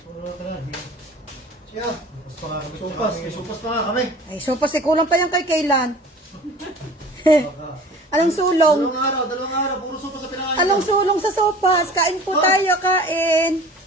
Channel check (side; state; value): both; normal; correlation 0.43